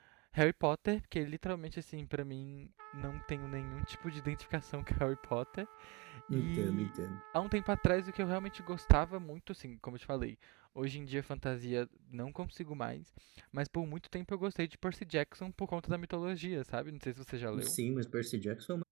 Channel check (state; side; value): quieter; left; 25.8 dB